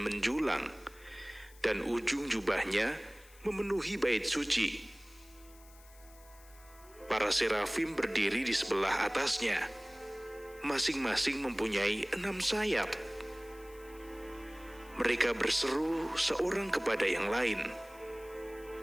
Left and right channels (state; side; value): noise; left; hiss, 24 dB below the sound